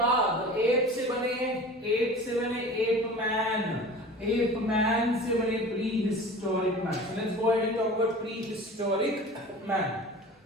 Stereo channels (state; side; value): normal; both; correlation 0.39